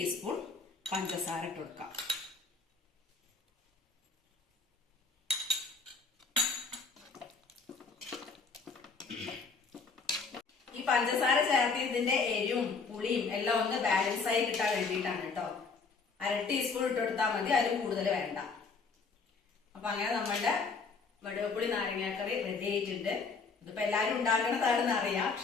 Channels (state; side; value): quieter; right; 4.7 dB